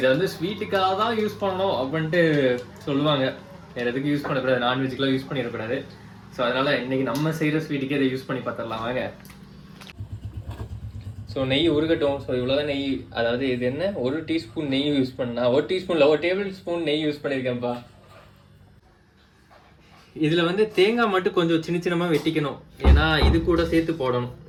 வந்து ஸ்வீட்டுக்காக தான் யூஸ் பண்ணணும் அப்படின்ட்டு சொல்லுவாங்க. வேற எதுக்கு யூஸ் பண்ணக்கூடாது, நான்வெஜ்க்குலாம் யூஸ் பண்ணிடக்கூடாது. ஸோ அதனால இன்னைக்கு நம்ம செய்யற ஸ்வீட்டுக்கே இதை யூஸ் பண்ணி பார்த்துடலாம் வாங்க. ஸோ நெய் உருகட்டும். ஸோ இவ்வளோதான் நெய், அதாவது இது என்ன 1 டீஸ்பூன் நெய் யூஸ் பண்ணா, 1 டீஸ்பூன்ல 1 டேபிள் ஸ்பூன் நெய் யூஸ் பண்ணியிருக்கேன்ப்பா. இதுல வந்து தேங்காய் மட்டும் கொஞ்சம் சின்ன சின்னமா வெட்டிக்கணும், ஏன்னா இது கூட சேர்த்து போடணும்.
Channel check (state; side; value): identical; both; correlation 1.00